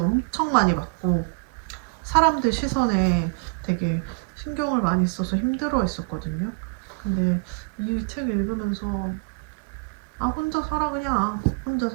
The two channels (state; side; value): quieter; left; 32.9 dB